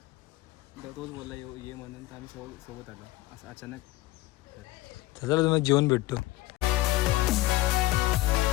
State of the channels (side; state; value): right; quieter; 17.6 dB